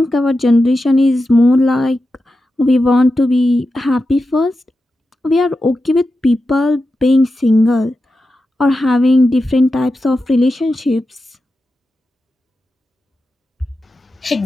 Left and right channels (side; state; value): both; normal; correlation 0.90